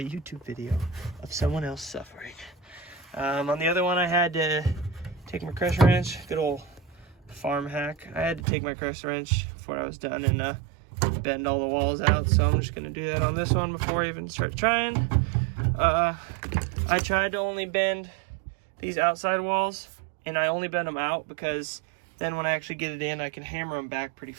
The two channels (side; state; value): left; drops out; at 8.5 s